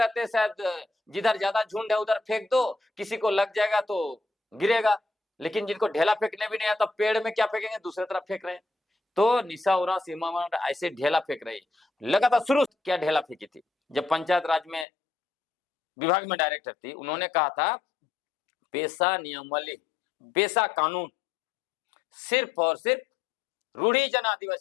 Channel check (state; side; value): drops out; right; at 14.9 s